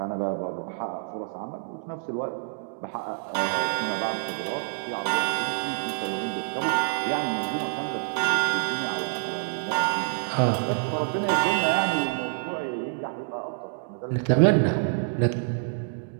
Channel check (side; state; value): left; silent; digital silence